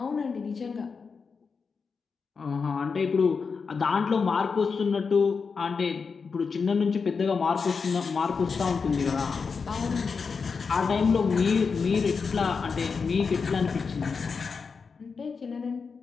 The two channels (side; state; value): right; quieter; 5.3 dB